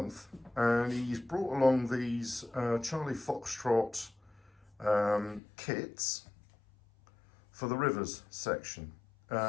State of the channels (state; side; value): drops out; right; at 5.4 s